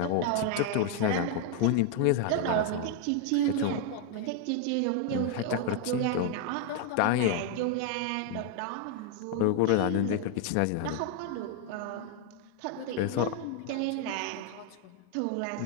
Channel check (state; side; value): different; both; correlation 0.00